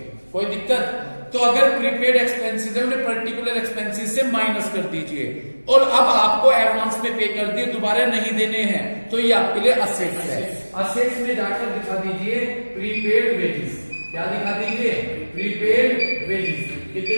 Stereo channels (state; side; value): inverted; both; correlation -1.00